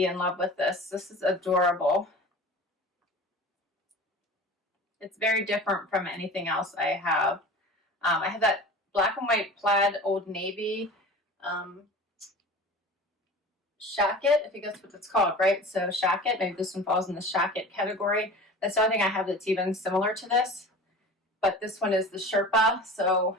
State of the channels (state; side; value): normal; both; correlation 0.38